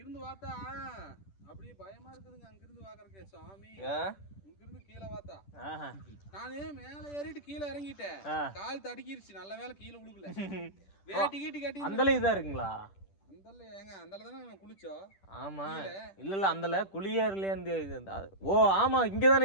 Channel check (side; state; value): right; late; 10 ms